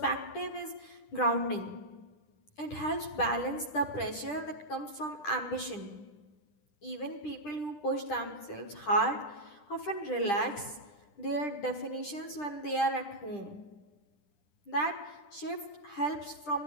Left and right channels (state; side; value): late; right; 10 ms